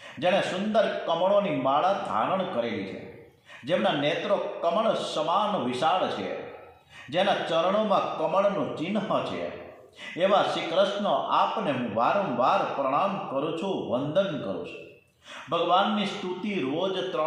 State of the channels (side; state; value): both; identical; correlation 1.00